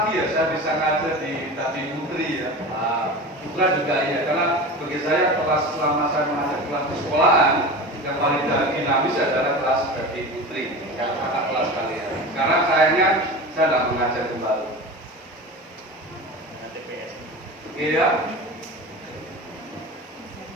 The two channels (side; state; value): both; normal; correlation 0.31